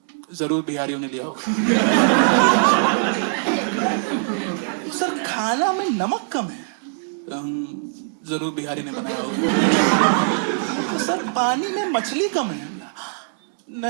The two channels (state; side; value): silent; left; digital silence